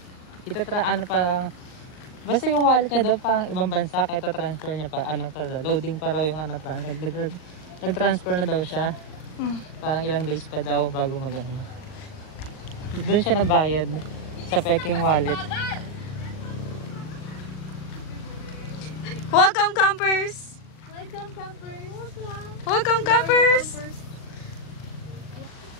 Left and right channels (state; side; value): late; right; 39 ms